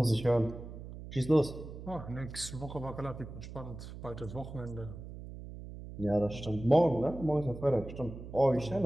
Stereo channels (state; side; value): noise; right; hum, 12 dB below the sound